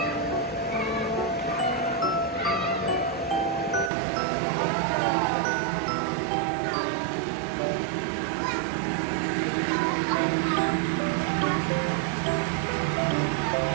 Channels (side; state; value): left; drops out; at 3.9 s